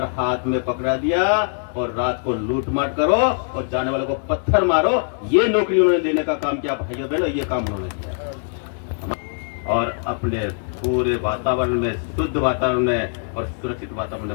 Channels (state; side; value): silent; right; digital silence